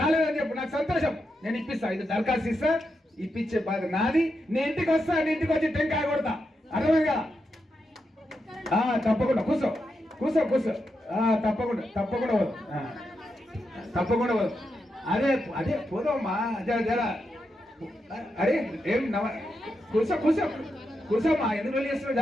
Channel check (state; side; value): normal; both; correlation 0.85